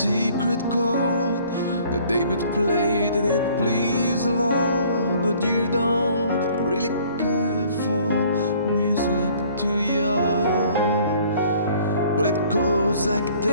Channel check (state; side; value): inverted; both; correlation -0.56